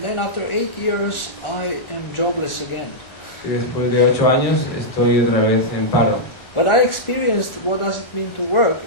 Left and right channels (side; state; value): right; late; 1.4 ms